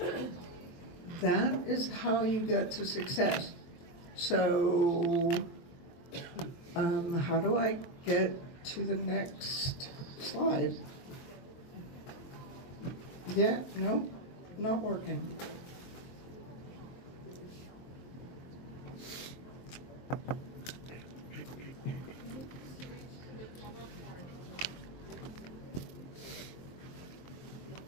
That is how you get to success. So, how do I get to the next slide? Yeah, no, not working.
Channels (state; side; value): late; right; 23 ms